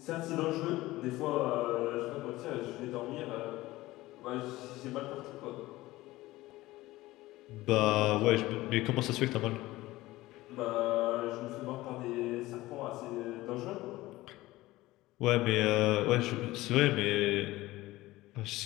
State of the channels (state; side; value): quieter; right; 18.1 dB